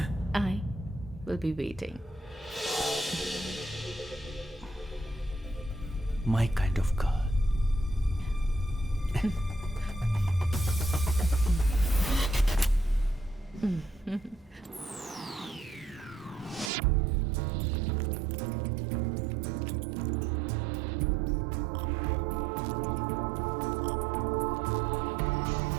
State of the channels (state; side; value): drops out; left; at 16.7 s